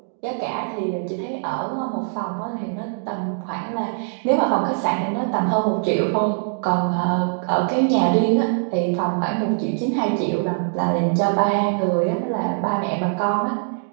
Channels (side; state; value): left; silent; digital silence